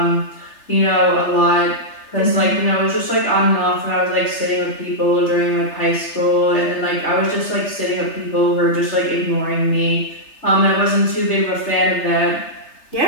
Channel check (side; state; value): right; late; 3.3 ms